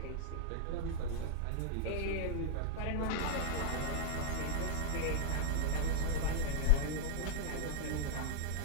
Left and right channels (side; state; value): both; different; correlation 0.00